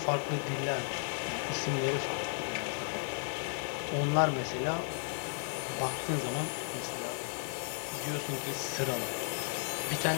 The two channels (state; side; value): silent; right; digital silence